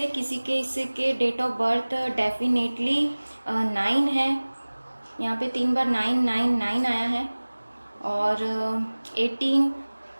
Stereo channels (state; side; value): inverted; both; correlation -1.00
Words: किसी के इससे के डेट ऑफ बर्थ डेफिनेटली 9 है। यहाँ पे 3 बार 9 9 9 आया है, और 18,